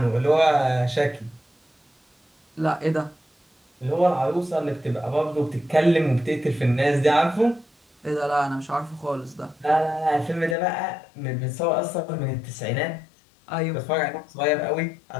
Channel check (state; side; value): drops out; right; at 10.6 s